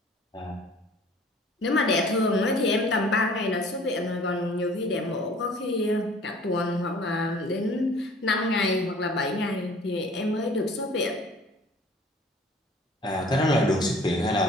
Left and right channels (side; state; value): both; normal; correlation 0.50